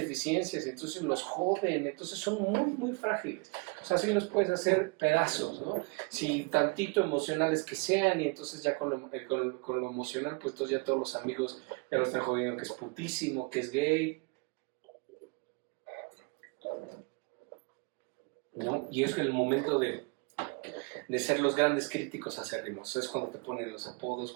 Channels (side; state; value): left; quieter; 30.7 dB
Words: y entonces los joden, entonces son muy frágiles. O sea, sí los puedes hacer pedazos, ¿no? Si tantito emocionales que sean, y entonces ya con lo emocional, pues entonces ya todos los amigos ya lo están jodiendo, que es putísimo, que es gay, ¿no? Y es el momento de ser los grandes críticos acérrimos. Es cuando te ponen los apodos,